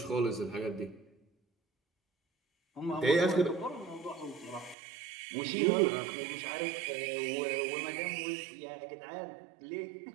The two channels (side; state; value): left; drops out; at 4.8 s